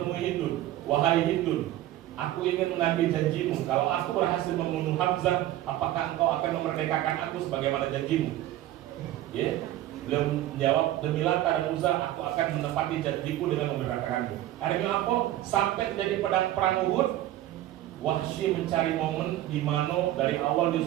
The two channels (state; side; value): quieter; left; 14.2 dB